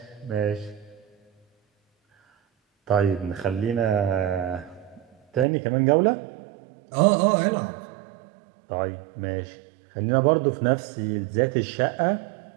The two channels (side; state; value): left; drops out; at 5.5 s